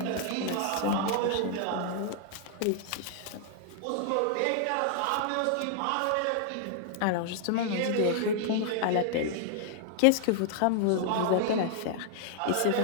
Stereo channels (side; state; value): both; different; correlation -0.01